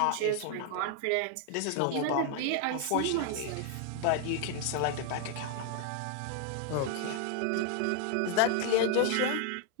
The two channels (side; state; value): both; different; correlation 0.00